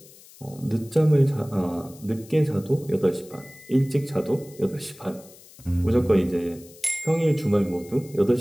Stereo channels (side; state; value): left; noise; hiss, 22 dB below the sound